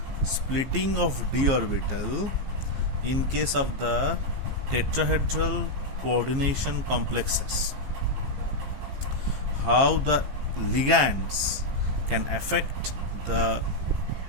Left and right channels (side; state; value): left; late; 15 ms